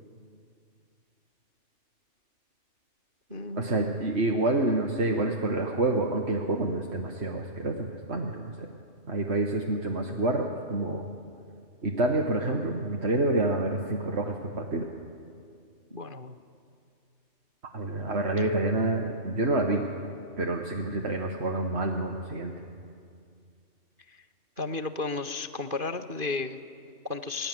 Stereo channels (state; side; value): late; left; 2.5 ms